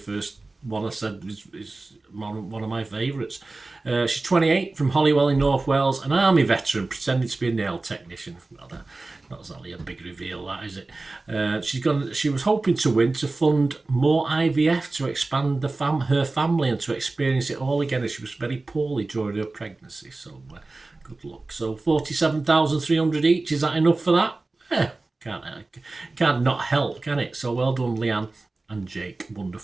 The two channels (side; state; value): left; quieter; 3.3 dB